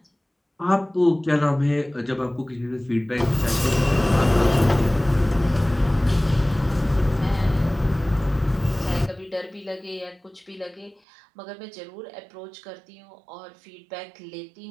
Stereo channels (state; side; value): drops out; left; at 11.0 s